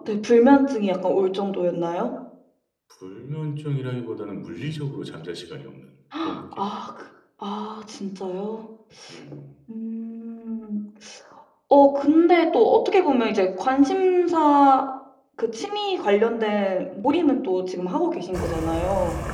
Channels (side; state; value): both; identical; correlation 1.00